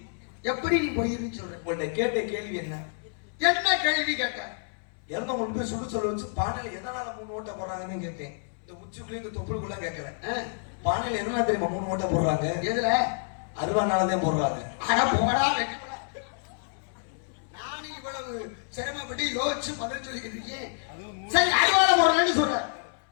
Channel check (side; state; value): right; silent; 59 dB below the other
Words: எப்படி நீ பொய்ன்னு சொல்ற? உங்கள்ட்ட கேட்ட கேள்வி என்ன? என்ன கேள்வி கேட்ட? இறந்த கொண்டு போய் சுடு சொல்ல வச்சு பானையில எதனால 3 ஓட்டை போடுறாங்கன்னு கேட்டேன். இந்த உச்சிக்குள்ளே இந்த தொப்புளுக்குள்ள கேட்கறேன். பானையில எதனால தெரியுமா 3 ஓட்டை போடுறாங்க? எதுல? அருவானாலதான் போடுறாங்க. ஆனா போடா வெட்டப்படா. நானும் இவ்வளவு சிரமப்பட்டு யோசிச்சு பதில் சொல்லிக்கிட்டு இருக்கேன். சரி, அருவால போடுறேன்னு சொல்ற.